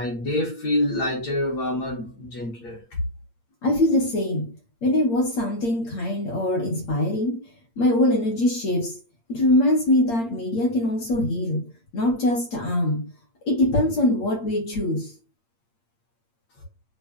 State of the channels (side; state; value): right; late; 8.7 ms